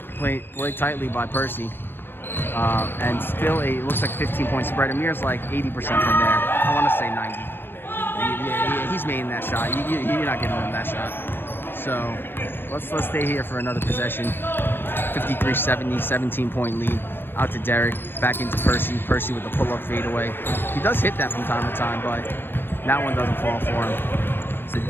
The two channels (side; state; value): right; late; 0.10 ms